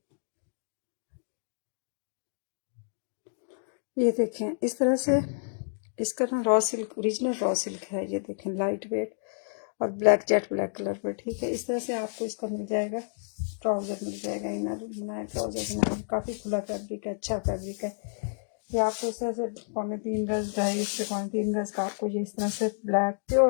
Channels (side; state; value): right; silent; digital silence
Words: ये देखें इस तरह से इसका ना raw silk, original raw silk है। ये देखें लाइट वेट और ब्लैक, जेट ब्लैक कलर पर, ठीक है। इस तरह से आपको इसका मिल जाएगा, ट्राउज़र मिल जाएगा, इनर बनाया ट्राउज़र बनाया, काफ़ी खुला फैब्रिक है, अच्छा फैब्रिक है। ये आपको इस तरह से 3.25 गज, 2.5 से 3.25 गज का आपको ये इस तरह से ब्लैक